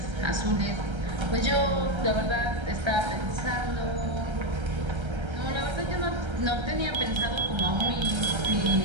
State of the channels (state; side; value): late; left; 1.3 ms